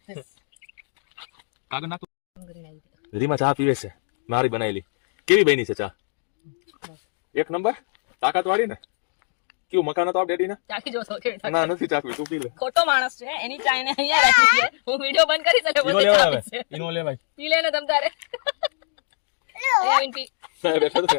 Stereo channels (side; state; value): right; silent; digital silence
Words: this. કાગળ નાખ. રીમા ચા પીવે છે, મારી બનાવેલી. કેવી બની છે ચા? એક નંબર. તાકાત વાળી ને. કેવું મકાન હતો આપ ડેડી ને? ચાખી જોશો કેવી થાય. ના નથી ચાકવી, તું પી લે. ખોટો માણસ છે, એની ચા એને અહીંયા રાખી છે. હું વિડિયો બંધ કરી શકે ઈનો બધે લેવાય ચાપી હવે. છે. ઈનો લેવાય. પી લે ને તમ તારે. અહીંયા આવીને પી. સાહેબ બેઠો છે.